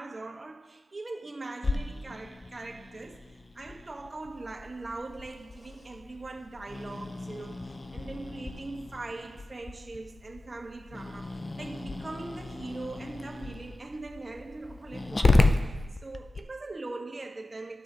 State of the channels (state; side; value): normal; both; correlation 0.94